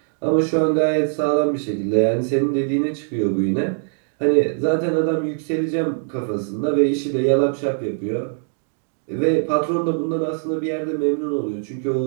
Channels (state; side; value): silent; left; digital silence